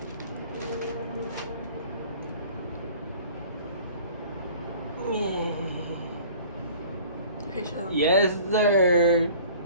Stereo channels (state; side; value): inverted; both; correlation -0.48